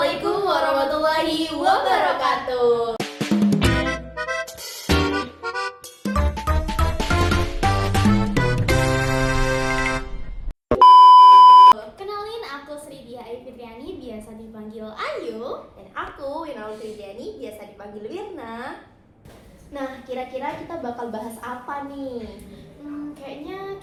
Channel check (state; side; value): identical; both; correlation 1.00